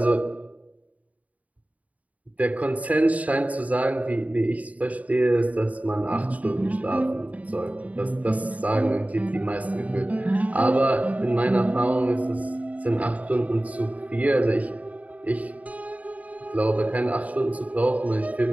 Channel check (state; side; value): late; left; 0.071 ms